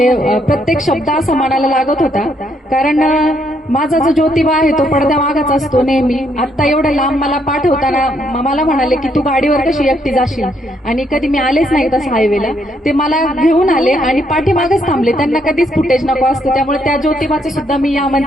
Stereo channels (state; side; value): normal; both; correlation 0.73